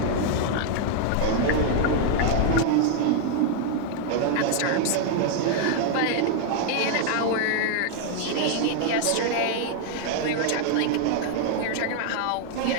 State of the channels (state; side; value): different; both; correlation 0.00